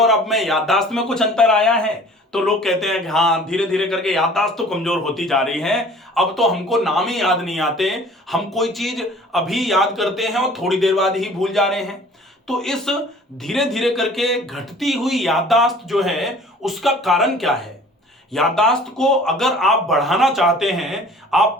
अब में याददाश्त में कुछ अंतर आया है, तो लोग कहते हैं कि हाँ, धीरे धीरे करके याददाश्त तो कमजोर होती जा रही है। अब तो हमको नाम ही याद नहीं आते, हम कोई चीज अभी याद करते हैं और थोड़ी देर बाद ही भूल जा रहे हैं। तो इस धीरे धीरे करके घटती हुई याददाश्त जो है, उसका कारण क्या है? याददाश्त को अगर आप बढ़ाना चाहते हैं, आप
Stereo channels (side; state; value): both; normal; correlation 0.49